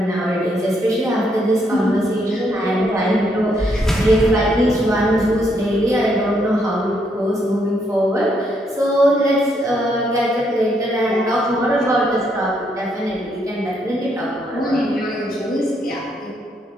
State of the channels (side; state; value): both; normal; correlation 0.74